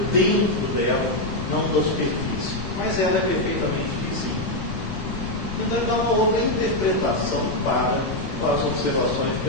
dentro dela, não da superfície. Mas ela é perfeitamente vizinha. Então ele dá uma outra interpretação para as observações de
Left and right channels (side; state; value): left; noise; rumble, 9 dB below the sound